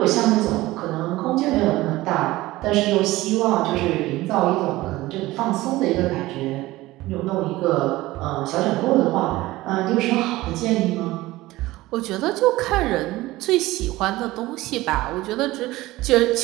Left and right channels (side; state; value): left; quieter; 18.2 dB